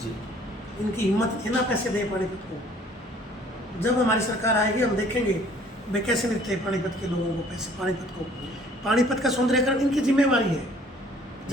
जी। इनकी हिम्मत है ना पैसे दें पानीपत को। जब हमारी सरकार आएगी हम देखेंगे वे कैसे देते हैं पानीपत के लोगों को पैसे। पानीपत का सौंदर्यकरण इनकी जिम्मेवारी है।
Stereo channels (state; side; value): normal; both; correlation 0.57